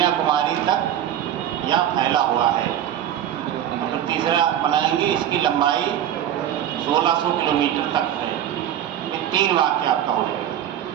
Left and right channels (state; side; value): quieter; left; 10.8 dB